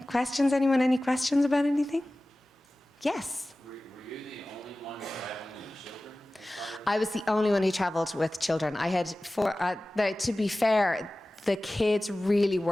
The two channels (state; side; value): normal; both; correlation 0.97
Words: questions? Anyone any questions about anything? Yes. Were you the only one traveling with children? I was the only one who traveled with children. I had four. To be fair, the kids really